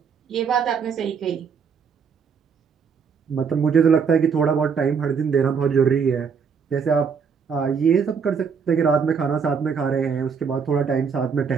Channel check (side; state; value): left; quieter; 6.2 dB